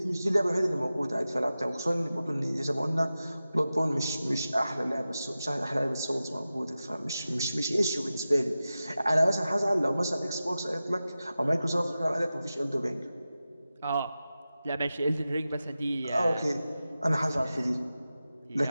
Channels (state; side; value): inverted; both; correlation -0.94